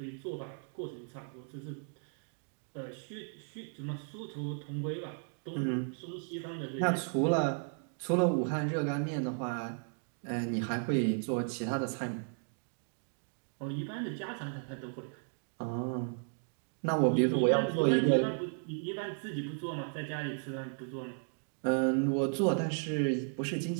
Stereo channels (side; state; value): left; silent; 54 dB below the other